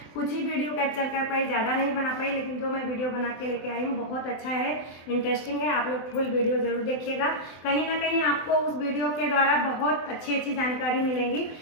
कुछ ही वीडियो कैप्चर कर पाई, ज़्यादा नहीं बना पाई, लेकिन जो मैं वीडियो बना के लेके आई हूँ बहुत अच्छा है, इंटरेस्टिंग है। आप लोग फुल वीडियो ज़रूर देखिएगा। कहीं ना कहीं आपको उस वीडियो के द्वारा बहुत अच्छी अच्छी जानकारी मिलेंगी।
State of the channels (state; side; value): late; right; 24 ms